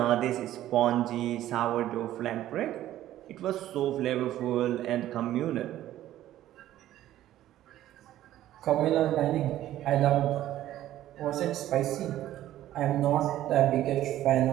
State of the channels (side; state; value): left; quieter; 13.4 dB